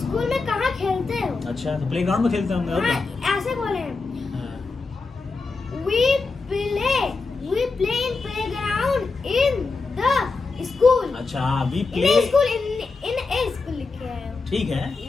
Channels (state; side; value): quieter; right; 4.1 dB